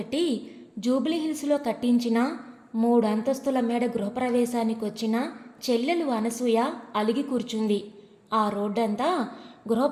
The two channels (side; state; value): both; identical; correlation 1.00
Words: జూబ్లీహిల్స్లో కట్టించిన 3 అంతస్తుల మేడ గృహప్రవేశానికి వచ్చిన చెల్లెలు అనసూయ అలిగి కూర్చుంది. ఆ రోడ్డంతా